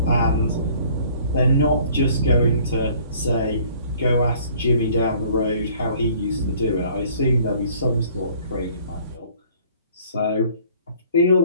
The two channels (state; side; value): inverted; both; correlation -0.56